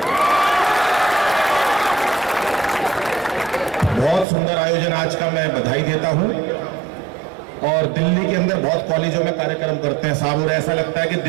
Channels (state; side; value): drops out; left; at 4.2 s